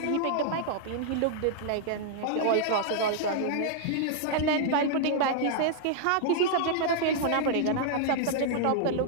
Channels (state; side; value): different; both; correlation -0.01